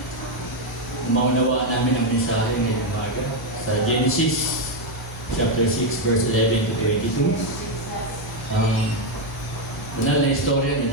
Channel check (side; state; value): left; noise; hum, 13 dB below the sound